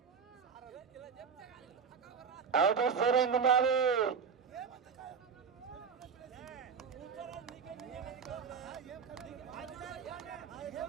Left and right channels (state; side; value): quieter; left; 6.2 dB